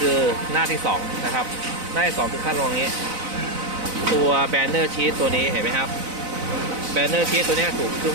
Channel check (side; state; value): left; late; 4.0 ms